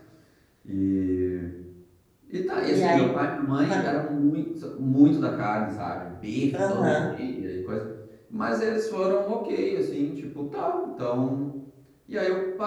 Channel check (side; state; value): both; identical; correlation 1.00